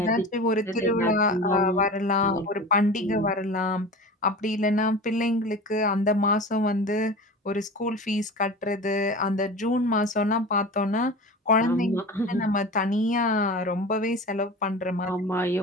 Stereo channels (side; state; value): both; normal; correlation 0.33